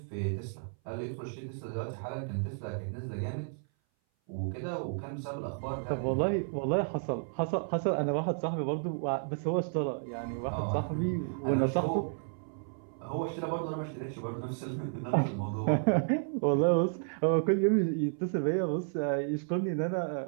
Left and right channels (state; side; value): silent; left; 56 dB below the other